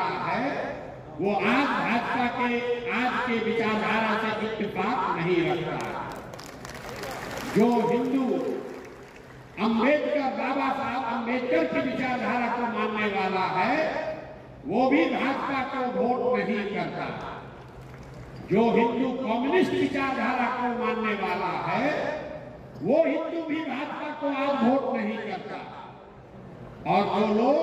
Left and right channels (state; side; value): identical; both; correlation 1.00